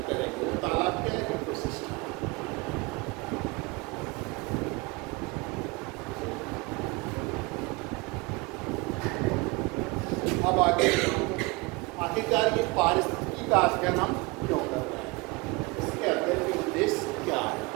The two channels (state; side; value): quieter; left; 25.4 dB